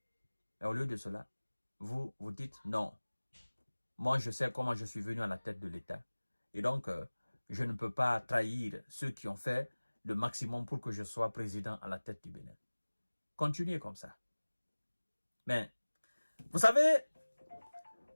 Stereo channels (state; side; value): inverted; both; correlation -1.00